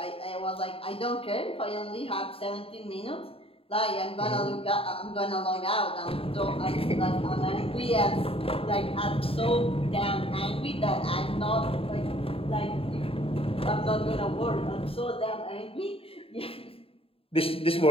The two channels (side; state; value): right; late; 0.27 ms